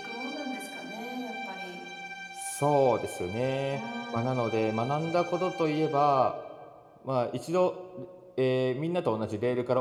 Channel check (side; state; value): both; identical; correlation 1.00